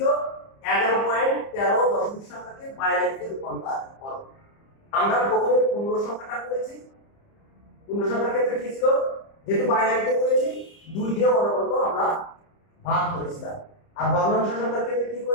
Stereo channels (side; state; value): right; late; 30 ms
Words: 11.13 দশমিক সংখ্যাকে বাইনারিতে রূপান্তর করো। আমরা প্রথমে পূর্ণ সংখ্যাটা করেছি, পূর্ণ সংখ্যার ক্ষেত্রে কি ছিল? যেহেতু বাইনারিতে করেছি 2 দিয়ে অনবরত আমরা ভাগ করেছিলাম, আর ভগ্নাংশ সংখ্যার ক্ষেত্রে কি